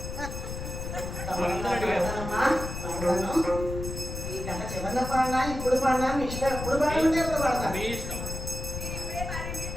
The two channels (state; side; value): noise; left; rumble, 6 dB below the sound